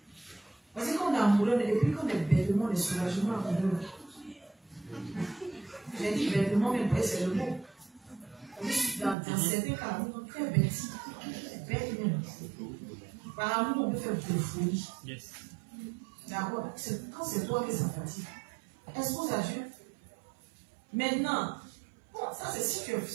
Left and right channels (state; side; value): drops out; left; at 9.2 s